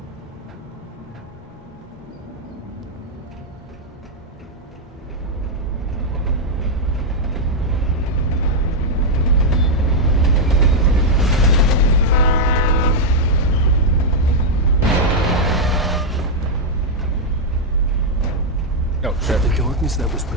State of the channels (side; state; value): both; normal; correlation -0.02